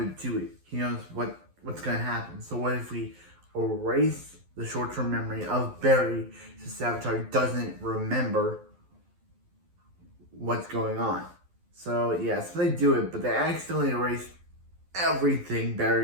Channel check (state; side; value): late; left; 11 ms